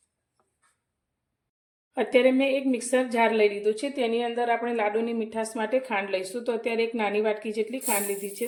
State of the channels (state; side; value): identical; both; correlation 1.00